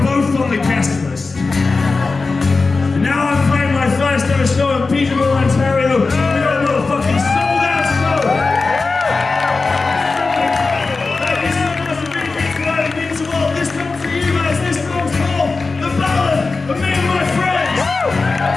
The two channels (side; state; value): right; quieter; 4.0 dB